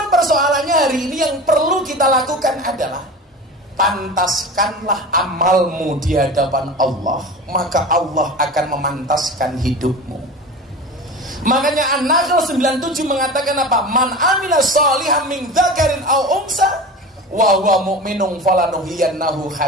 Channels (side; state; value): both; normal; correlation 0.32